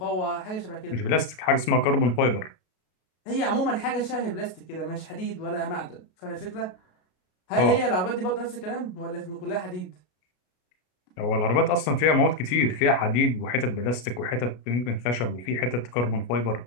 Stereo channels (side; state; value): right; late; 33 ms